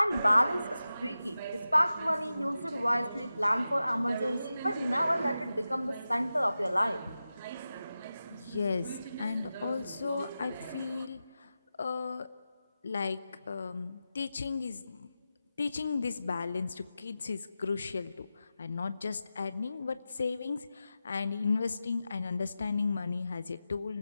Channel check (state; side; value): inverted; both; correlation -0.93